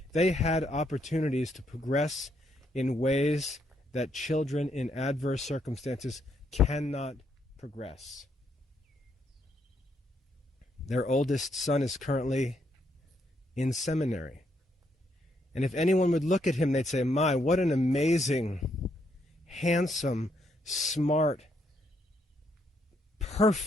they had opportunities to progress in ways that children in adverse circumstances cannot progress. Their oldest son is currently in seminary. And if anyone would look at him, they'd say, "My, what an amazing handsome, smart,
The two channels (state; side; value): normal; both; correlation 0.75